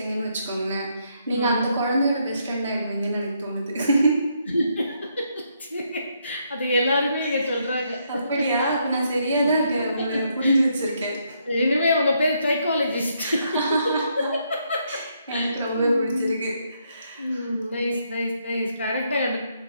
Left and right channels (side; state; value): both; inverted; correlation -0.75